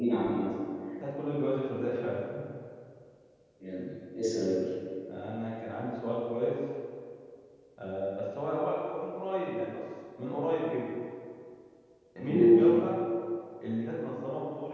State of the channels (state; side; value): identical; both; correlation 1.00